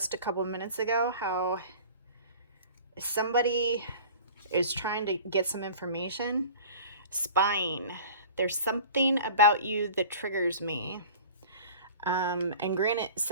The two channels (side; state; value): both; inverted; correlation -0.42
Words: a couple minutes ago how somebody is trying to get some information? Spying. There's something about you that triggers me. And granted,